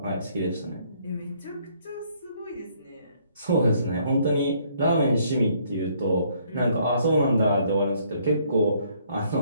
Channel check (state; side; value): inverted; both; correlation -0.66